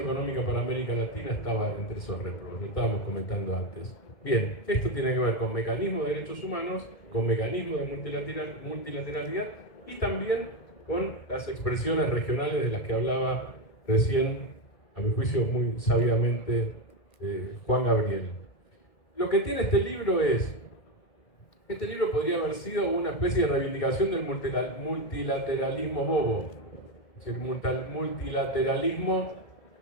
para América Latina estaba entre esos réprobos, lo estábamos comentando antes. Bien, esto tiene que ver con mecanismos de derechos humanos, con mecanismos de multilateralidad y también con las expresiones regionales de las que hablaba recién, a mi juicio muy sabiamente, Juan Gabriel. Lo que tiene este libro podría haber sido una especie de reivindicación del multilateralismo bobo, es decir, multilateralismo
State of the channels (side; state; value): right; late; 2.0 ms